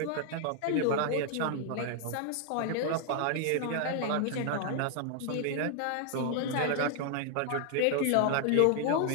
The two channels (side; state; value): both; different; correlation 0.00